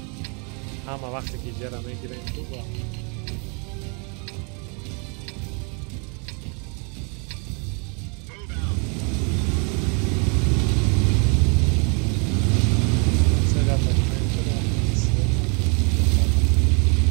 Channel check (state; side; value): quieter; left; 35.6 dB